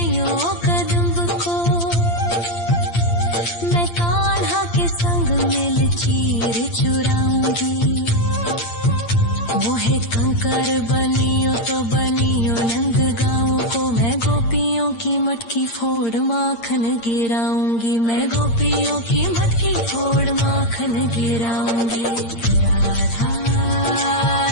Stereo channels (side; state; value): right; late; 8.7 ms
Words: कदम्ब को। मैं कान्हा के संग मिल चीर चुराऊंगी। मोहे कंकर बनियो तो बनियो नंद गाँव को। मैं गोपियों की मटकी फोड़ माखन गिराऊंगी। मैं गोपियों की मटकी फोड़ माखन गिराऊंगी। राधा